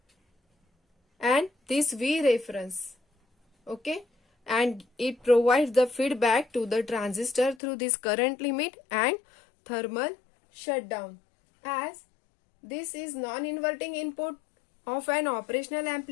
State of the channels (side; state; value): right; drops out; at 7.6 s